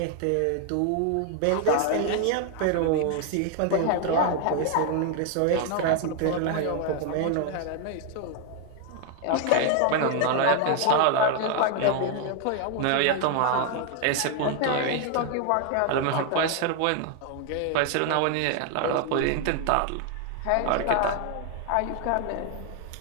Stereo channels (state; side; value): different; both; correlation 0.01